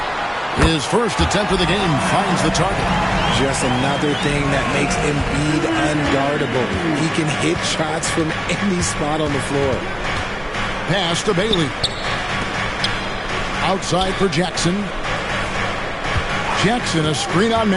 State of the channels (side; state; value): both; identical; correlation 1.00